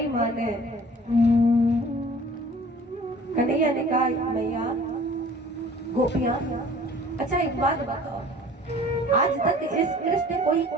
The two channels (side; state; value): both; normal; correlation 0.49